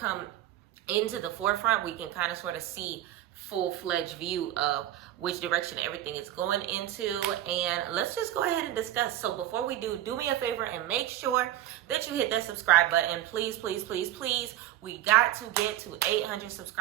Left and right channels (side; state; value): left; quieter; 13.3 dB